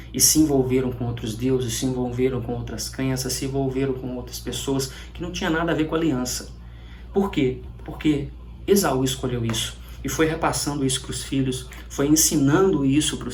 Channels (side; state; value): both; identical; correlation 1.00